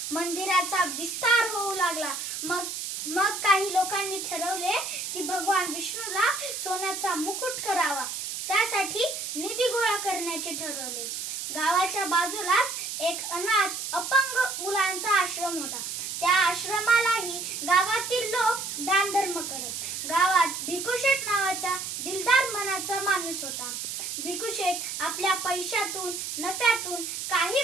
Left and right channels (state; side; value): noise; right; hiss, 5 dB below the sound